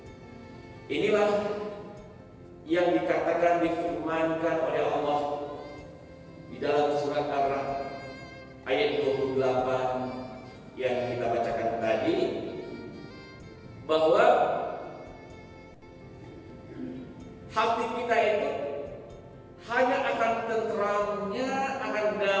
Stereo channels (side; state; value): both; identical; correlation 1.00